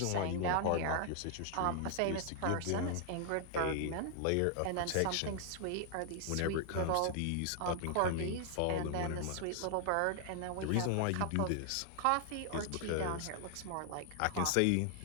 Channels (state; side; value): different; both; correlation 0.00